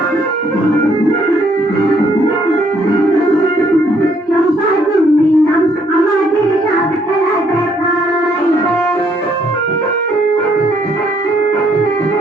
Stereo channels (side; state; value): both; normal; correlation 0.68